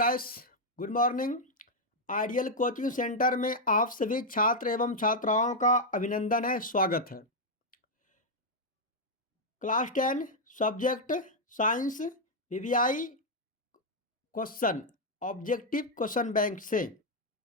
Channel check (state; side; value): normal; both; correlation -0.01